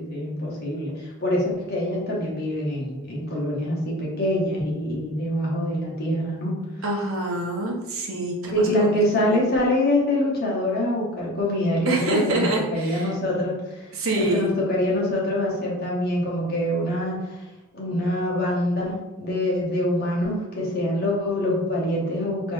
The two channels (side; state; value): both; normal; correlation 0.39